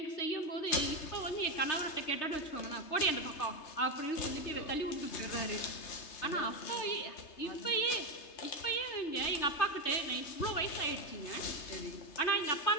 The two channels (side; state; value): right; late; 3.3 ms